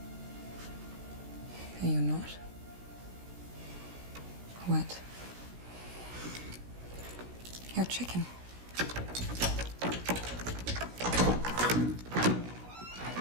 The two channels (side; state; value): left; late; 16 ms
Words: Are you not? Wet. You're chicken.